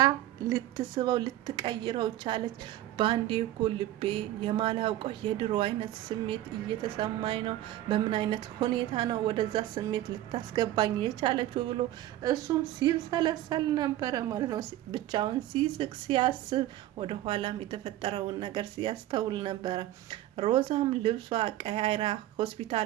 ልትስበው ልትቀይረው ቻለች። በአንዴ እኮ ልቤ የማላውቀው የድሮ አይነት ስሜት እየተሰማኝ ነው፣ በምን አይነት ሁኔታ ነው ወደዛ ስሜት ልታስገባኝ የቻለችው ብሎ እሱም ሲብሰለሰል ነበረ ማለት ነው። ብቻውን ሲስቅ ሲያስብ ወደ ኋላም የተፈጠረውን ነገር ሲያስተውል ነበረ። ሮዛም ልብሷ ቀያይራ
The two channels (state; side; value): quieter; left; 14.2 dB